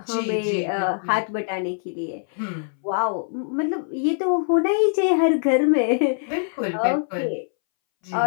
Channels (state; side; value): silent; right; 63 dB below the other